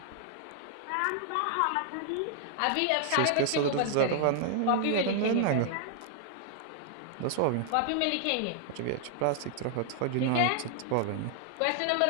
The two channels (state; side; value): different; both; correlation 0.00